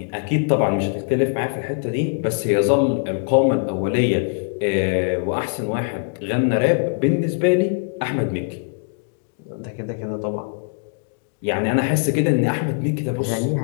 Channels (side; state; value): right; silent; digital silence